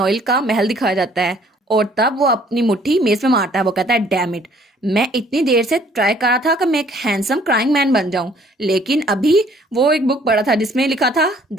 का महल दिखाया जाता है और तब वो अपनी मुट्ठी मेज में मारता है। वो कहता है डैम इट, मैं इतनी देर से ट्राई कर रहा था कि मैं एक हैंडसम क्राइंग मैन बन जाऊं, लेकिन अभी वो एक बुक पढ़ा था जिसमें लिखा था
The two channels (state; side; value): normal; both; correlation 0.59